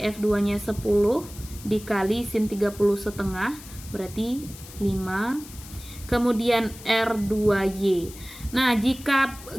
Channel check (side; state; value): left; noise; hiss, 17 dB below the sound